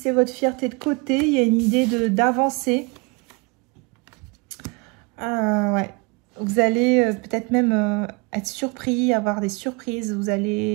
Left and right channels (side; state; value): left; quieter; 29.6 dB